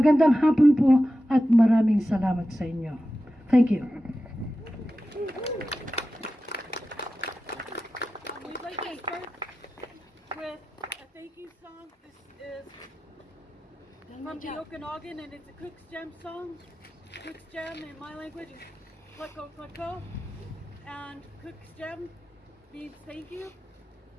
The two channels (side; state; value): both; normal; correlation 0.93